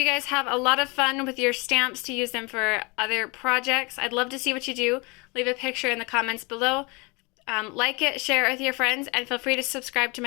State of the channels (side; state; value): right; quieter; 28.0 dB